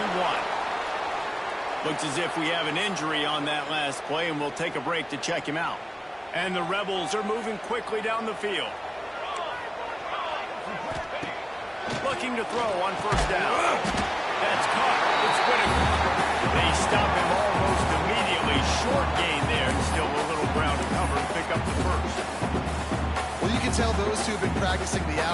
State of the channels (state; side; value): identical; both; correlation 1.00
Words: Looks as if we have an injury on that last play, and we'll take a break to check him out. And the Rebels are moving quickly down the field. Looking to throw on first down. That's caught. It's Whitaker. They stop him almost immediately. Short gain there. Still a little ground to cover and pick up the first. Well, you can tell those two have been practicing the